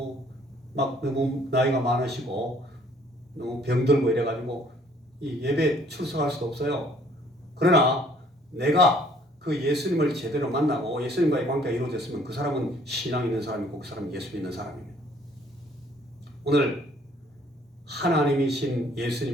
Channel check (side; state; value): both; normal; correlation 0.60